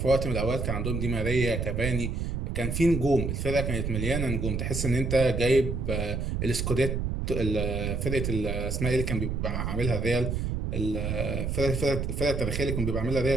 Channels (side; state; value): right; noise; rumble, 1 dB below the sound